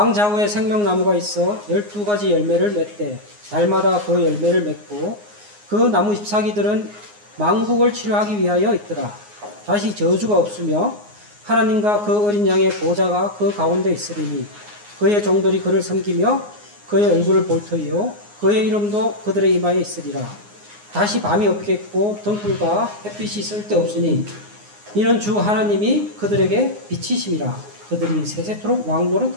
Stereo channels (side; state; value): left; late; 9.6 ms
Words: 좌우에 생명나무가 있어 12가지 열매를 맺되 달마다 그 열매를 맺고 그 나무 잎사귀들은 망국을 치료하기 위하여 있더라. 다시 저주가 없으며 하나님과 그 어린 양의 보좌가 그 가운데 있으리니 그의 종들이 그를 섬기며 그의 얼굴을 볼 터이요 그의 이름도 그들의 이마에 있으리라. 다시 밤이 없겠고 등불과 햇빛이 쓸데없으니 이는 주 하나님이 그들에게 빛이심이라. 그들이 세세토록